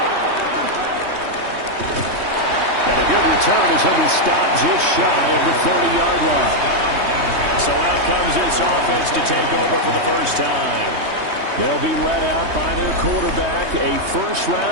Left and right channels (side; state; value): left; late; 3.2 ms